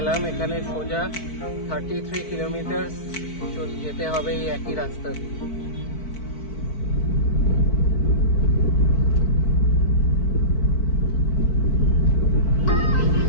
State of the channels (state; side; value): late; right; 4.5 ms